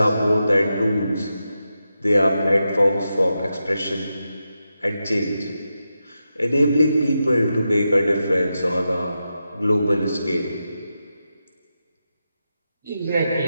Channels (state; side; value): inverted; both; correlation -0.88